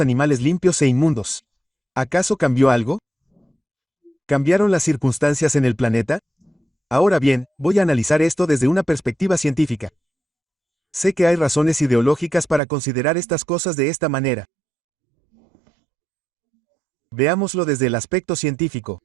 limpios e inmundos? ¿Acaso cambió algo? ¿Cambiaron las circunstancias en el planeta? Ahora bien, voy a analizar esto desde una perspectiva científica. Sé que hay razones ideológicas para considerar estas cosas de esta manera. Veámoslo desde el aspecto científico.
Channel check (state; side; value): drops out; left; at 12.6 s